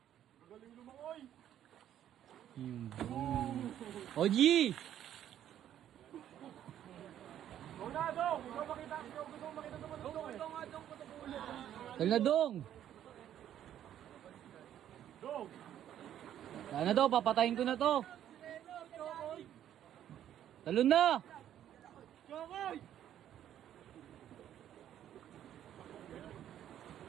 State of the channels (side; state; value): left; quieter; 10.9 dB